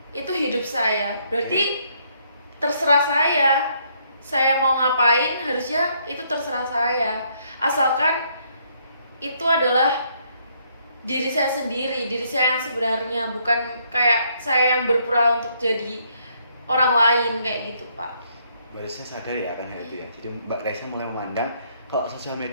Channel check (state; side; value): inverted; both; correlation -0.70